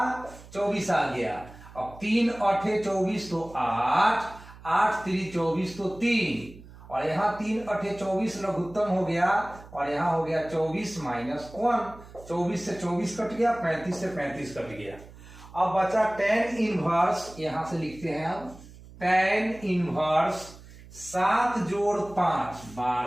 24 आ गया। अब 3 8 24 तो 8, 8 3 24 तो 3, और यहाँ 3 8 24 लघुत्तम हो गया, और यहाँ हो गया 24 माइनस 1। 24 से 24 कट गया, 35 से 35 कट गया। अब बचा tan इनवर्स, यहां से लिखते हैं अब tan इनवर्स 7 जोड़ 5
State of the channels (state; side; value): noise; right; hum, 19 dB below the sound